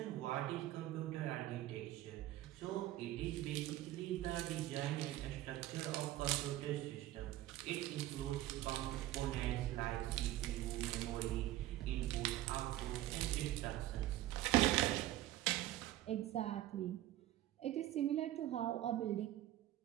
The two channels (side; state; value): left; quieter; 14.6 dB